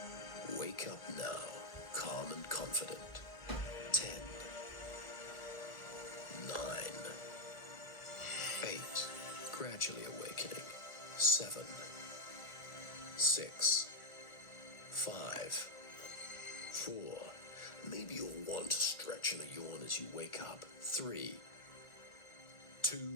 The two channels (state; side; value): late; right; 1.4 ms